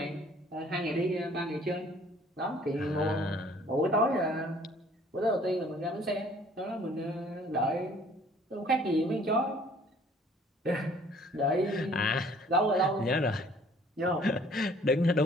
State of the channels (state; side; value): normal; both; correlation 0.56